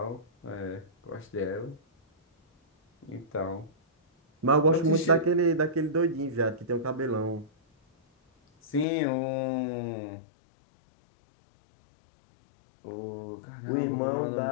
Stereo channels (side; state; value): right; drops out; at 8.8 s